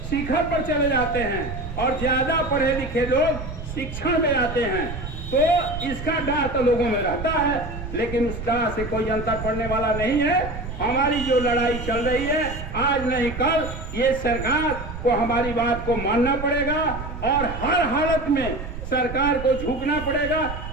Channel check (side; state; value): right; noise; rumble, 8 dB below the sound